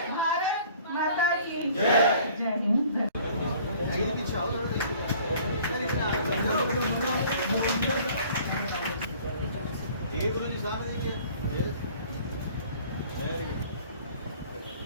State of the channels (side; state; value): both; inverted; correlation -0.52